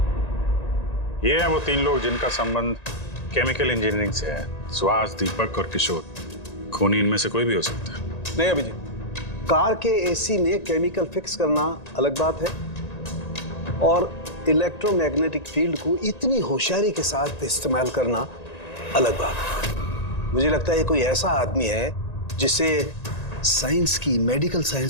ये हैं वो 3 लोग जिनका संबंध केमिकल इंजीनियरिंग से है। सुहास, दीपक और किशोर। खूनी इनमें से कोई भी हो सकता है। नहीं अभिजीत, कार के एसी में केमिकल फिक्स करना अलग बात है और इलेक्ट्रोमैग्नेटिक फील्ड को इतनी होशियारी के साथ इस्तेमाल करना अलग बात है। मुझे लगता है ये कोई ऐसा आदमी है जिसे साइंस की, मेडिकल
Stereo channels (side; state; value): right; late; 1.9 ms